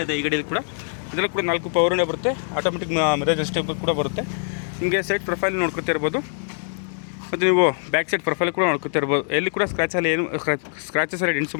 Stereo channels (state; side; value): silent; right; digital silence